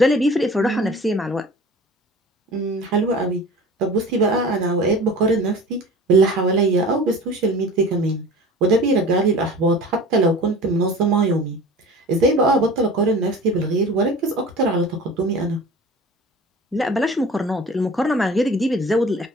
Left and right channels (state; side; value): normal; both; correlation 0.40